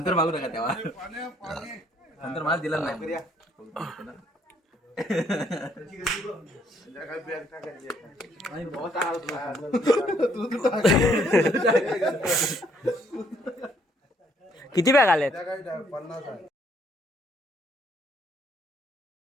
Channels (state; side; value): normal; both; correlation 0.67